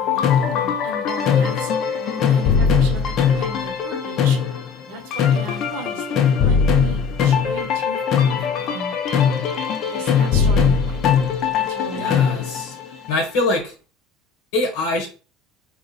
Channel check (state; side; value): quieter; right; 6.0 dB